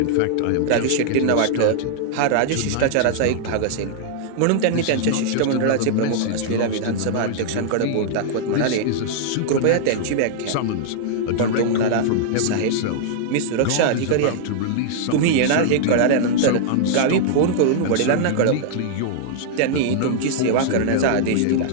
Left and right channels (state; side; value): different; both; correlation -0.01